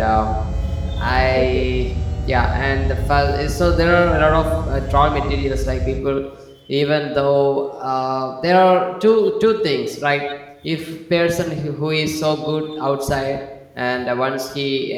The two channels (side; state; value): both; identical; correlation 1.00